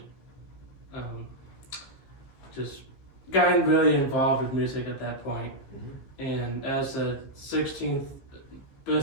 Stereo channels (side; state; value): right; late; 15 ms